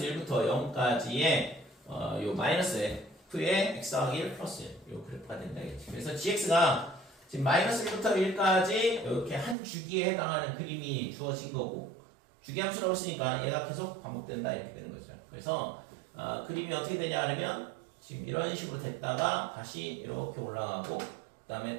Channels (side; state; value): left; drops out; at 9.6 s